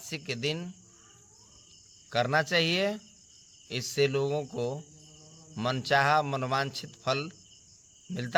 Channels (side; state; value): both; identical; correlation 1.00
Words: के दिन करना चाहिए। इससे लोगों को मनचाहा मनवांछित फल